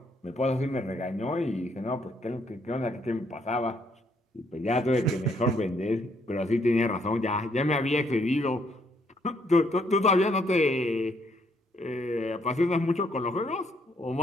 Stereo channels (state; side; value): normal; both; correlation 0.70